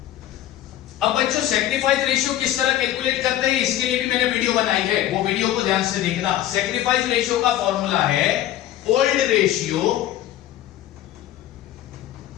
अब बच्चों सेक्रीफाइस रेशियो किस तरह कैलकुलेट करते हैं इसके लिए भी मैंने वीडियो बनाई है, वो वीडियो को ध्यान से देखना। सेक्रीफाइस रेशियो का फॉर्मूला है old ratio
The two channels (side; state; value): right; quieter; 12.9 dB